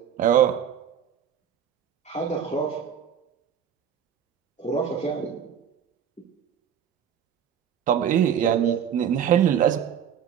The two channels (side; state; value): left; quieter; 8.7 dB